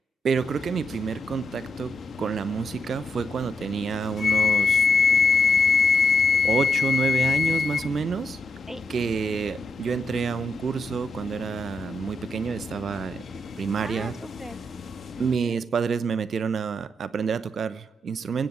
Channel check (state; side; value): normal; both; correlation 0.81